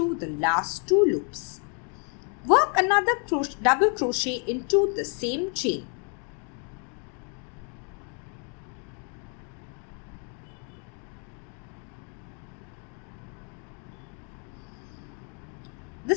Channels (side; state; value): right; quieter; 39.6 dB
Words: the last 2 loops. Work another double crochet into the same chain.